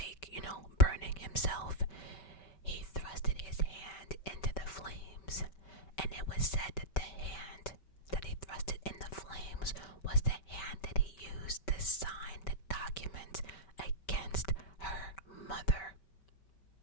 burning himself, he thrusted his hand into the flames, and it was said that the hand that he thrusted in the flames was the hand that he used to sign the document against her mother.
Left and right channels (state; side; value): late; right; 5.2 ms